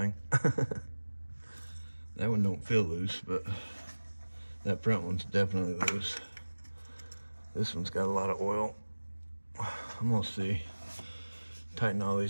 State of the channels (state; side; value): inverted; both; correlation -1.00